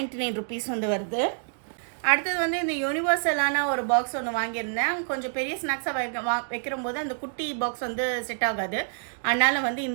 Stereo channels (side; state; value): left; silent; digital silence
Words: ருபீஸ் வந்து வருது. அடுத்தது வந்து இந்த யூனிவர்சலான ஒரு பாக்ஸ் ஒன்று வாங்கியிருந்தேன். கொஞ்சம் பெரிய ஸ்நாக்ஸாக வைக்கிற போது அந்த குட்டி பாக்ஸ் வந்து செட் ஆகாது. அதனால் வந்து